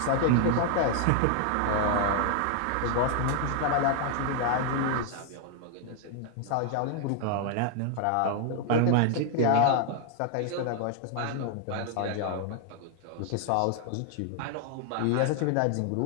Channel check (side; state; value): both; different; correlation 0.00